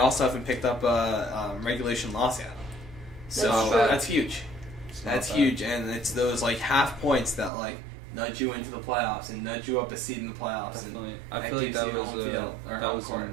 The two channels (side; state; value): left; drops out; at 7.5 s